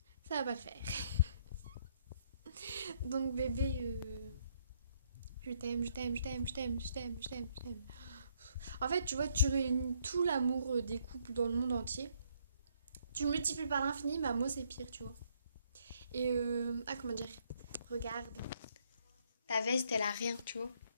Ça va pas le faire. Donc, bébé, je t'aime. En fait, tu vois, tu réunis tout l'amour des couples dans le monde entier. Tu le multiplies par l'infini, bah moi c'est pire, tu vois. Et comment dire? Regarde. Ta veste, elle a rien, tu vois.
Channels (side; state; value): both; inverted; correlation -0.69